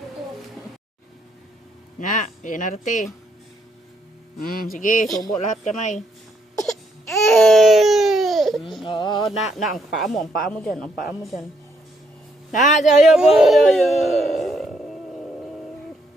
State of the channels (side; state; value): both; normal; correlation 0.74